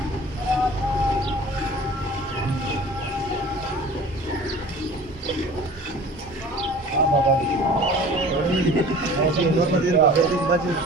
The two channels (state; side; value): normal; both; correlation 0.43